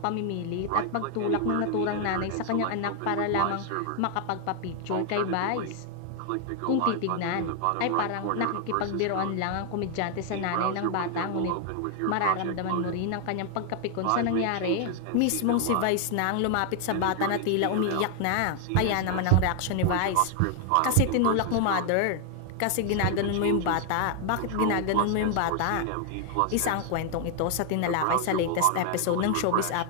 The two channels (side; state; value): both; different; correlation 0.00